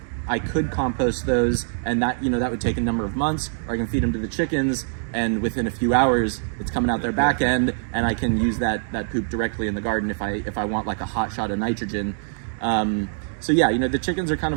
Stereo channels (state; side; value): silent; left; digital silence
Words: I could compost those, and that, you know, that would take a number of months, or I can feed them to the chickens, and within a few hours, it's coming out their back end, and I can use that poop directly in the garden if I want like a hot shot of nitrogen. So yeah, you know, the chickens are kind